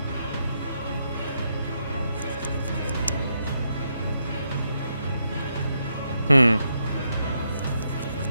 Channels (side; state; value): both; inverted; correlation -0.80